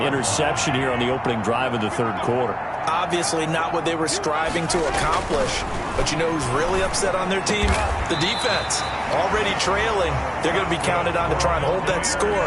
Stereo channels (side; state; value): both; identical; correlation 1.00